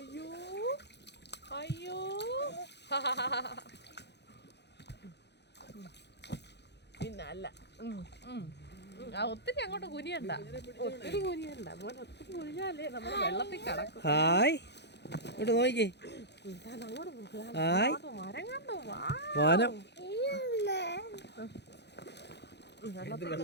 അയ്യോ പിന്നല്ല ഒത്തിരി അങ്ങോട്ട് കുനിയണ്ട, ഒത്തിരി കുനിയണ്ട മോനെ. ഒത്തിരി കുനിഞ്ഞാലേ നമ്മൾ വെള്ളത്തിൽ കിടക്കും. ഹായ് ഇങ്ങോട്ട് നോക്കിക്കേ. ഹായ് മരം കണ്ടോ? വാനം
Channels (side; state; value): right; late; 0.50 ms